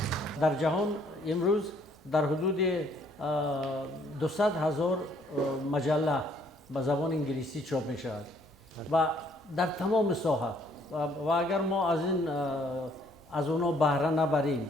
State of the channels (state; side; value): normal; both; correlation 0.64